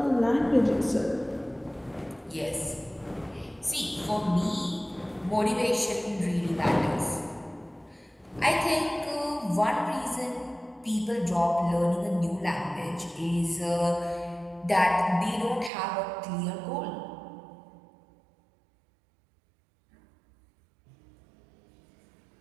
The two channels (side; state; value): left; drops out; at 15.7 s